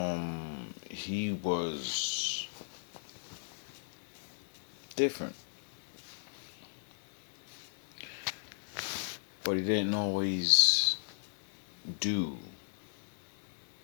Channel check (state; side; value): silent; right; digital silence